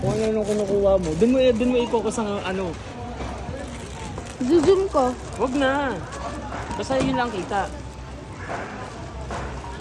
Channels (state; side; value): identical; both; correlation 1.00